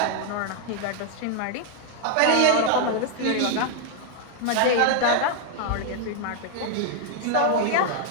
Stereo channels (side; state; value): both; different; correlation 0.00